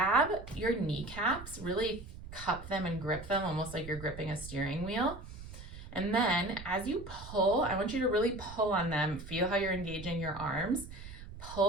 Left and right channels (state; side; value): noise; right; rumble, 13 dB below the sound